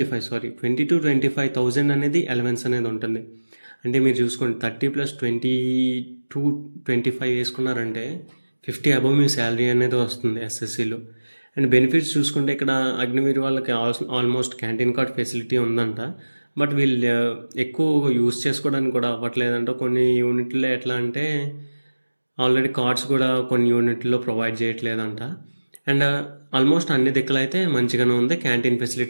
25,000 అనేది అలవెన్స్ అనేది ఉంటుంది. అంటే మీరు చూసుకోండి 30 ప్లస్ 22-25 వేసుకున్నారంటే 50 అబవ్ మీ శాలరీ అనేది వస్తుంది ఎస్ఎస్సిలో. అండ్ బెనిఫిట్స్ చూసుకుంటే ఇక్కడ అగ్నివీర్ వాళ్ళకి ఆల్మోస్ట్ క్యాంటీన్ కార్డ్ ఫెసిలిటీ ఉందంట. బట్ వీళ్ళు ఎక్కువ యూస్ చేసుకోవడానికి కూడా అవ్వట్లేదంట. కొన్ని యూనిట్లో ఎట్లా అంటే ఆల్రెడీ కార్డ్స్ కూడా కొన్ని యూనిట్లో ప్రొవైడ్ చేయట్లేదంట. అండ్ ఆల్మోస్ట్ అన్ని దిక్కులు అయితే మంచిగానే ఉంది. క్యాంటీన్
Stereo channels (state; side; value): inverted; both; correlation -1.00